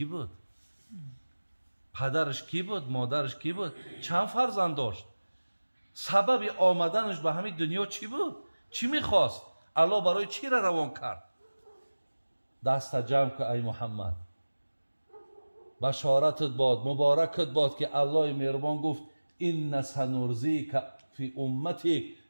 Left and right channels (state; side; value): inverted; both; correlation -1.00